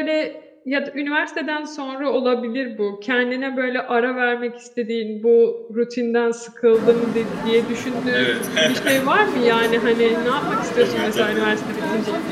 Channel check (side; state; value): both; identical; correlation 1.00